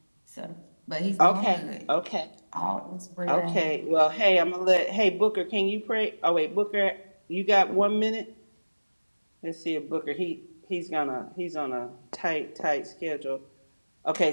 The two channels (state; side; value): inverted; both; correlation -1.00